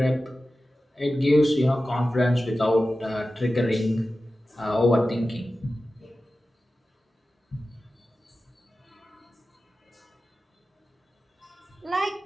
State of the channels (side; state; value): both; normal; correlation 0.94